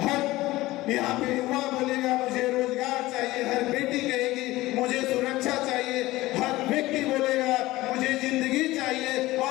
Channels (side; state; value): right; quieter; 18.1 dB